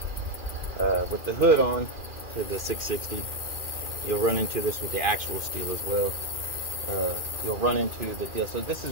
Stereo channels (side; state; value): left; late; 2.4 ms